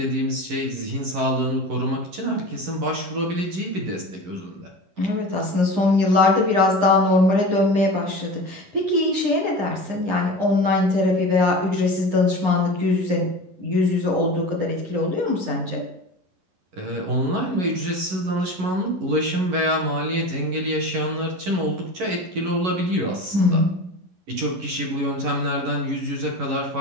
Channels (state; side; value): late; left; 11 ms